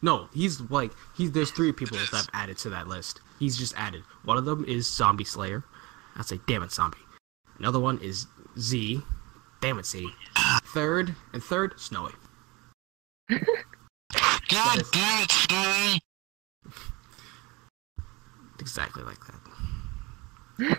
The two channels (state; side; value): quieter; left; 24.5 dB